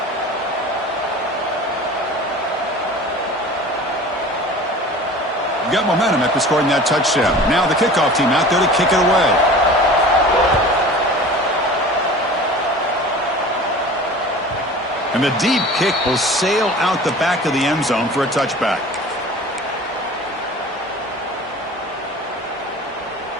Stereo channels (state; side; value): normal; both; correlation 0.40